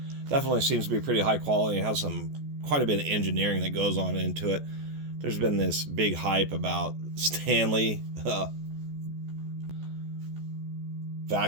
definitely seems to be pretty high quality. It has quite a bit of engineering that goes on into it. There's been this big hype about Stanley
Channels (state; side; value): late; left; 14 ms